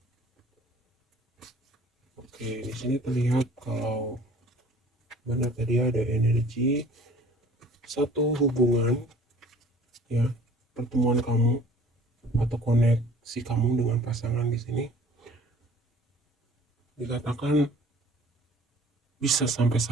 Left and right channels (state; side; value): normal; both; correlation 0.50